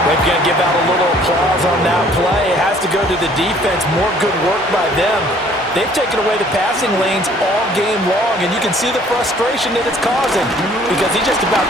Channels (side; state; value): both; normal; correlation 0.57